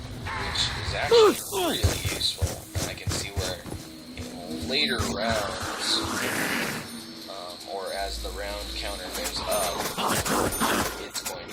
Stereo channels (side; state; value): both; identical; correlation 1.00